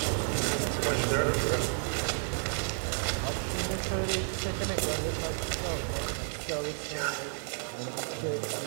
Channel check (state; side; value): silent; left; 57 dB below the other